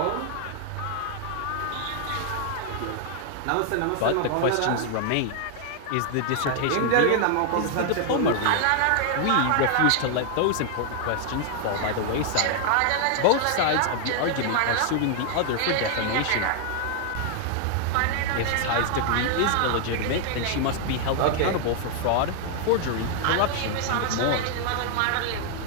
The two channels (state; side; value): different; both; correlation 0.00